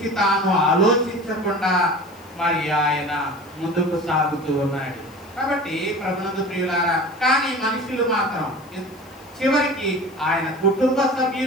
తాను ఆలోచించకుండా మరి ఆయన ముందుకు సాగుతూ ఉన్నాడు. కాబట్టి ప్రభునందు ప్రియులారా, కానీ మనుషులు మాత్రం చివరికి ఆయన కుటుంబ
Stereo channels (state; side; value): noise; left; hiss, 27 dB below the sound